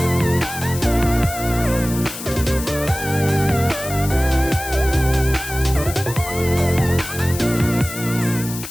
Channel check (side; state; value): left; noise; hiss, 10 dB below the sound